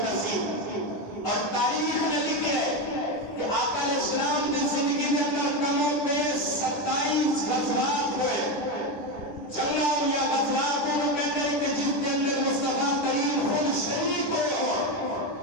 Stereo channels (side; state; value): right; late; 10 ms